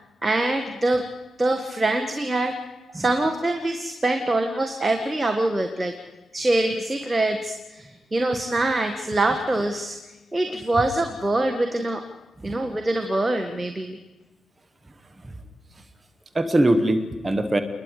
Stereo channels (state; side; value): normal; both; correlation 0.92